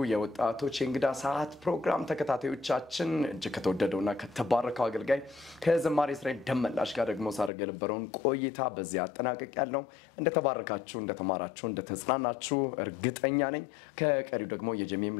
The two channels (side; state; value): right; drops out; at 7.5 s